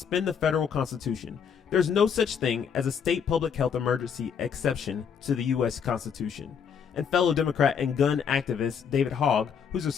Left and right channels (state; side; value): quieter; right; 7.1 dB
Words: the federal Constitution. There's no such thing as a state public health emergency exception to the U.S. Constitution. And fellow Democrat and gun activist David Hogg, who's a